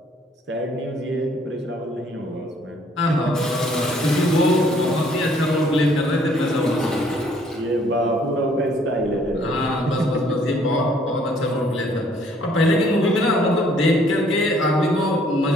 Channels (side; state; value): both; normal; correlation 0.62